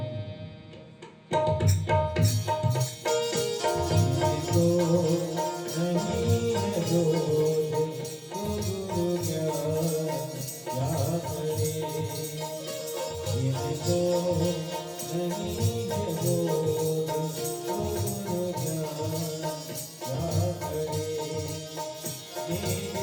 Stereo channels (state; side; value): identical; both; correlation 1.00